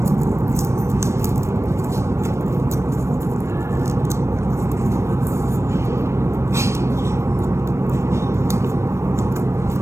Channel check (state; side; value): late; left; 0.13 ms